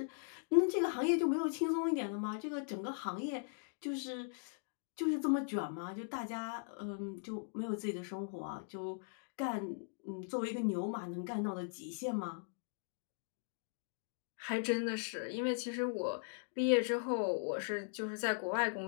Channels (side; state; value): right; silent; digital silence